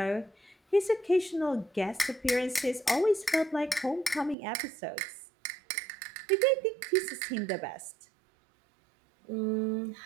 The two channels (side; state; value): left; drops out; at 4.4 s